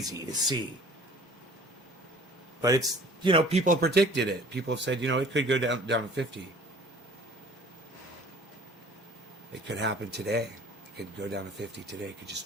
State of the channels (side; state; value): both; normal; correlation 0.49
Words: to see. But it's, people have predicted it. People have said, it could go down to 50. It could happen today. It could go down to 50 today. It could